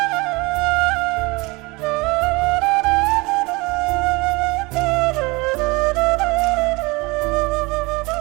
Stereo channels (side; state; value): left; quieter; 25.0 dB